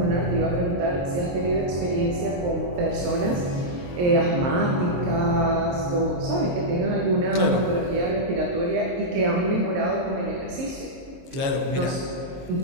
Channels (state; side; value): late; left; 22 ms